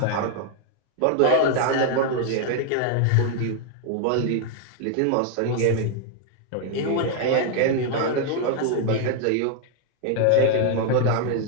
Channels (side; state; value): both; different; correlation 0.00